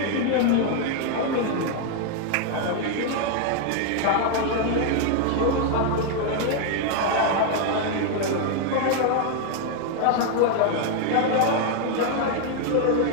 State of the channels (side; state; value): both; different; correlation 0.00